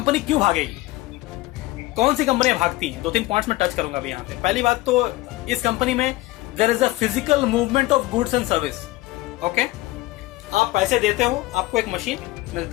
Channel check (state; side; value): quieter; right; 19.2 dB